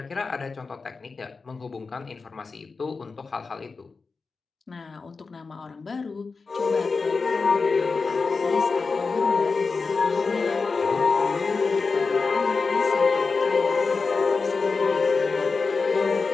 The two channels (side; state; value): right; quieter; 4.4 dB